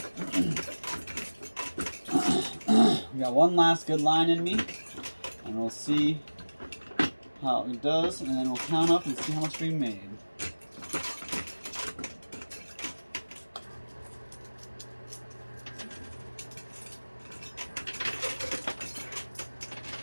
we got one last good line in me, and we'll see how it does, and then we'll count up and see how much we made.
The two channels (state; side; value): inverted; both; correlation -1.00